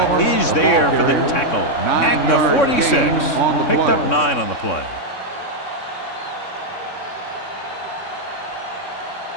is there for the tackle at the 46. Picked up 9 on the play.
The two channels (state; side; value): late; right; 3.6 ms